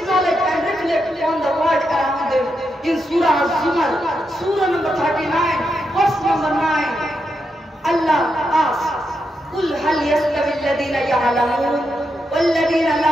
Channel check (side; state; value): both; normal; correlation 0.84